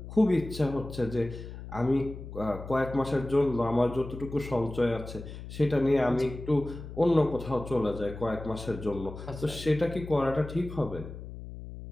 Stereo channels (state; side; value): noise; left; hum, 11 dB below the sound